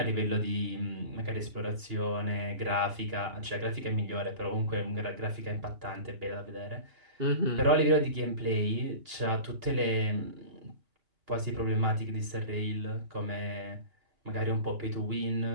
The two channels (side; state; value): left; late; 2.8 ms